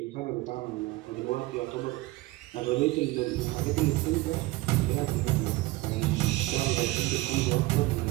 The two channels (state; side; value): quieter; left; 19.8 dB